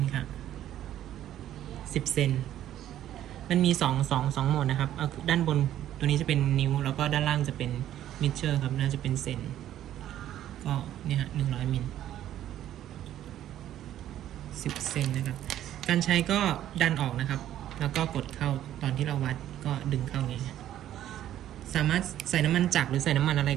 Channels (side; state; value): left; quieter; 12.0 dB